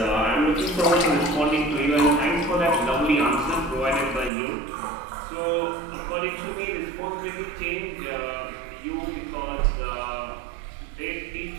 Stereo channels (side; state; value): left; drops out; at 4.3 s